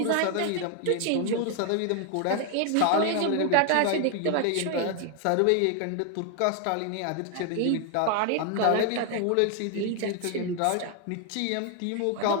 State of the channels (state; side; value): different; both; correlation 0.00